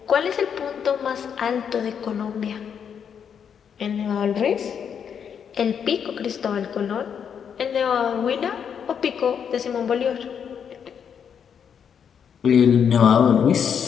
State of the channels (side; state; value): right; quieter; 7.6 dB